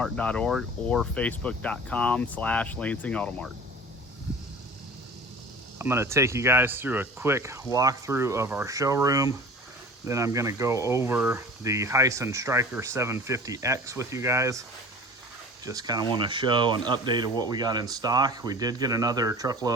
or facebook.com/lansingautomart. I'm going to take you guys through a quick walkthrough of our showroom. Then I'm going to go over the Hisun Stryker 750X with you guys. Just kind of want to show an update of what we got in stock. We did get another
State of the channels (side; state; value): both; normal; correlation 0.40